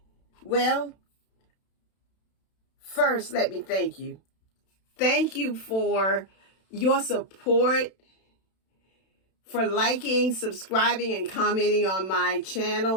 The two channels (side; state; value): right; late; 32 ms